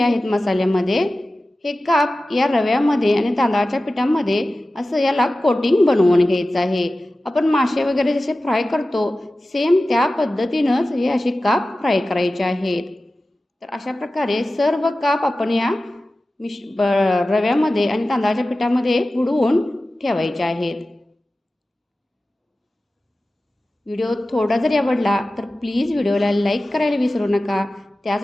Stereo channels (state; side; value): normal; both; correlation 0.95